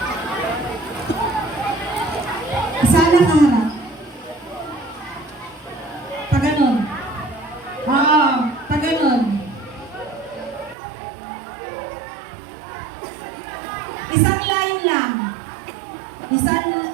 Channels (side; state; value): left; drops out; at 10.8 s